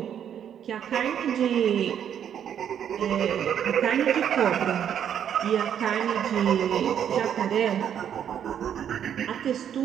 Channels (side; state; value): left; quieter; 9.1 dB